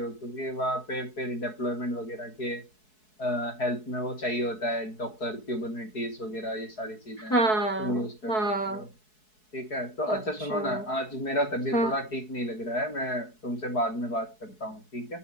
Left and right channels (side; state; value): right; late; 4.7 ms